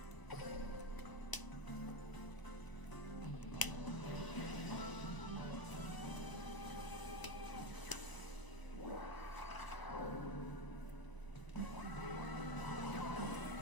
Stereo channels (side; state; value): right; late; 1.0 ms